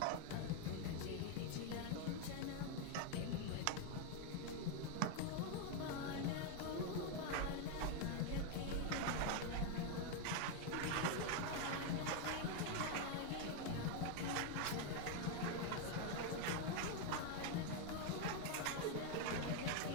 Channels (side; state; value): both; different; correlation 0.01